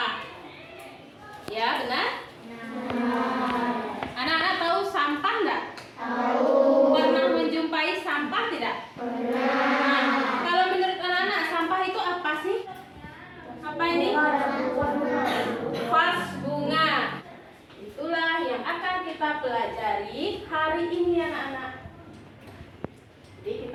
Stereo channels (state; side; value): identical; both; correlation 1.00